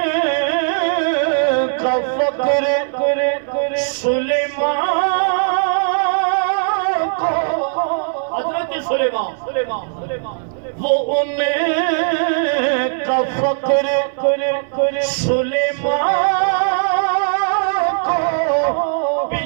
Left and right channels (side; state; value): left; silent; 59 dB below the other